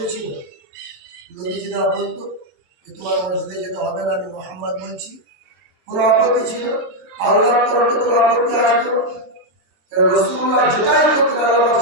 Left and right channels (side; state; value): left; late; 23 ms